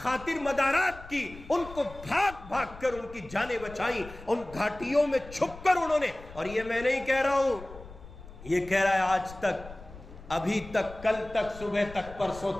مدارات کی، ان کو بھاگ بھاگ کر ان کی جانیں بچائیں، ان گھاٹیوں میں چھپ کر انہوں نے، اور یہ میں نہیں کہہ رہا ہوں، یہ کہہ رہا ہے آج تک، ابھی تک، کل تک، صبح تک، پرسوں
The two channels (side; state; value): left; noise; rumble, 16 dB below the sound